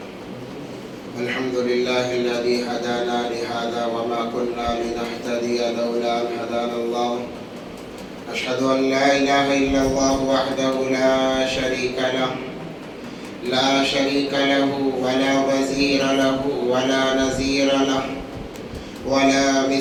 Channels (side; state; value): both; identical; correlation 1.00